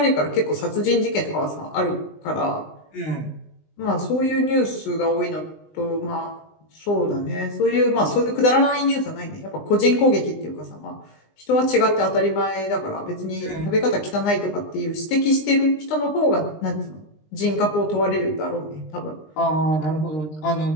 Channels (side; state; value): right; late; 20 ms